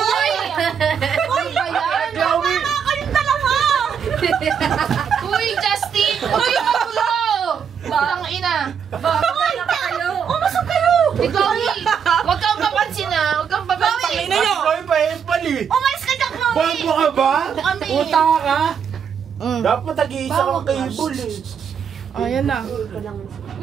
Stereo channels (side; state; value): left; quieter; 7.3 dB